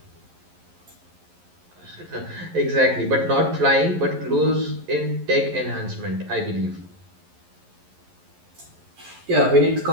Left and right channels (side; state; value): left; late; 11 ms